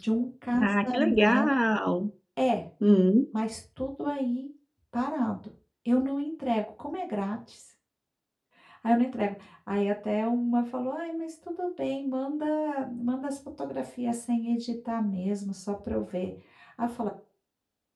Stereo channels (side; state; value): both; identical; correlation 1.00